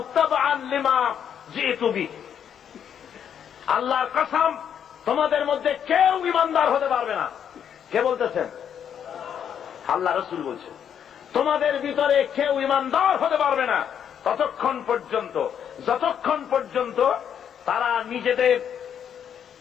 তাবআন লিমা জিতু বিহি। আল্লাহর কসম, তোমাদের মধ্যে কেউ ঈমানদার হতে পারবে না। কে বলতেছেন? আল্লাহ রাসূল বলছেন, তোমাদের ভিতরে কেউ ঈমানদার হতে পারবে না ততক্ষণ পর্যন্ত, যতক্ষণ পর্যন্ত তারা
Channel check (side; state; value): right; quieter; 8.6 dB